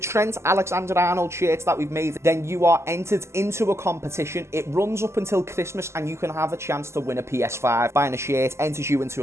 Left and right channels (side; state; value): left; late; 0.13 ms